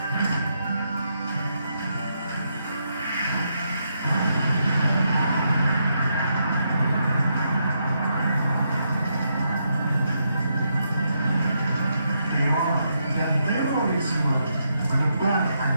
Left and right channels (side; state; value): both; inverted; correlation -0.80